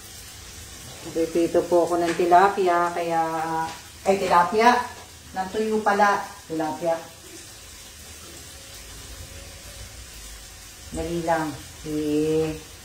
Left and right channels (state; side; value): identical; both; correlation 1.00